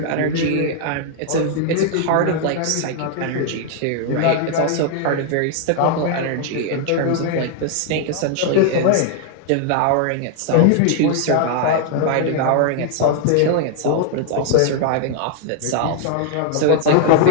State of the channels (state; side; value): different; both; correlation 0.00